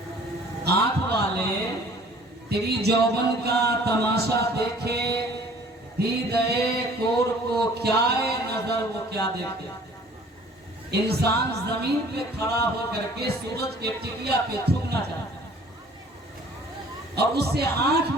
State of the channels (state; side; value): normal; both; correlation 0.52